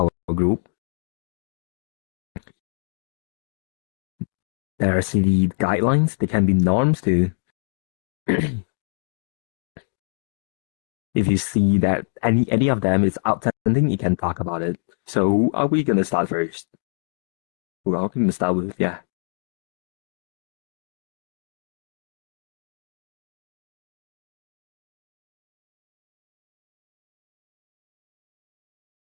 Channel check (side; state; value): right; silent; digital silence